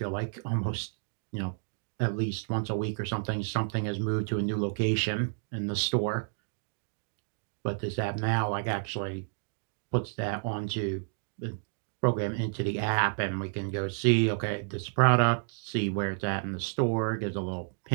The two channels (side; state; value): left; silent; digital silence